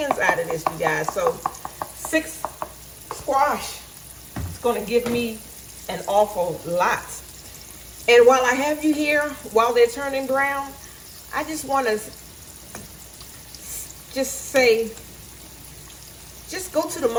out of this, you guys. So 6 squash is gonna give me an awful lot. And while I have you here, while they're turning brown, I just want to just say, just go to the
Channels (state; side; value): identical; both; correlation 1.00